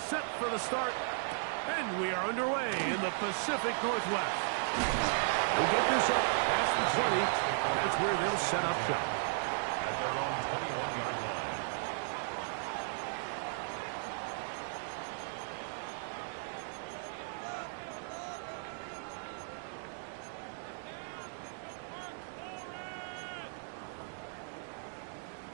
for the start, and we are underway in the Pacific Northwest. We'll get this up past the 20. That's where they'll set up shop. At their own 21-yard line.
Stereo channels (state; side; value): silent; left; digital silence